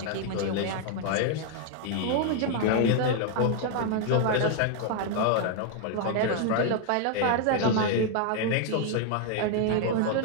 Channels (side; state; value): both; different; correlation 0.00